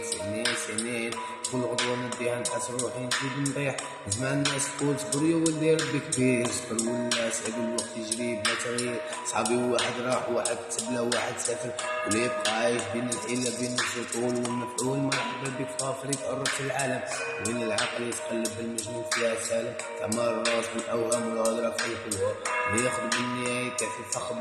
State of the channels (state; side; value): identical; both; correlation 1.00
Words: سنين كل غدوة نديها نحس روحي نزيد نطيح. نسمع الناس تقول صبر يا ولدي ربي كبير. صبر ولا سعد الوقت يجري بلا تغيير. صحابي واحد راح واحد تبلا واحد سافر، واللي يبقى عايش بين الحيلة بين السطول والمفعول. مرحبا بك في افريقيا قربت العالم، وين العقل يتقلب المجنون فيها سالم. تعمر الراس بالاوهام والهضره في الحلوه، وياخذ بالنهايه في فخ